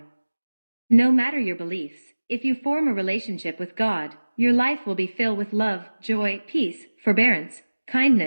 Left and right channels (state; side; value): inverted; both; correlation -1.00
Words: No matter your beliefs, if you form a relationship with God, your life will be filled with love, joy, peace, forbearance,